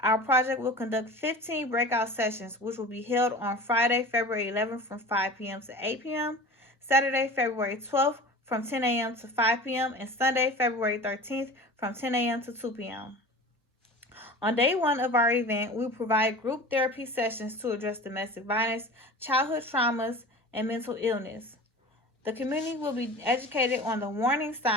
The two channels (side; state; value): both; normal; correlation 0.37